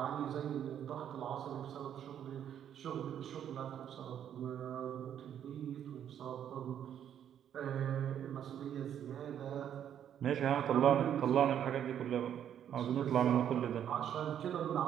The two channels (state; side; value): quieter; left; 9.6 dB